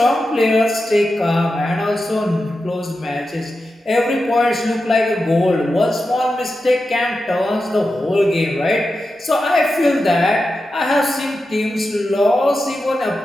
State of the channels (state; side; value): normal; both; correlation 0.91